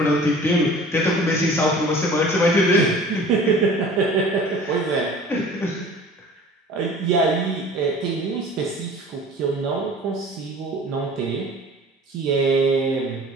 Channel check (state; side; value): normal; both; correlation 0.45